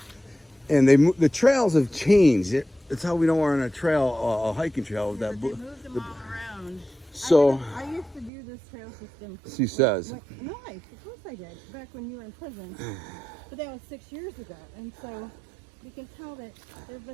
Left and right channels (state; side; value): drops out; left; at 8.3 s